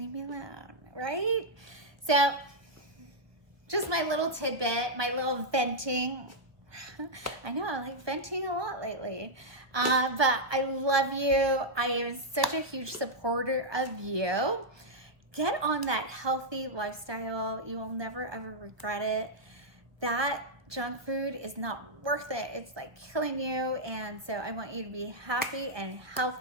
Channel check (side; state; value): left; late; 1.0 ms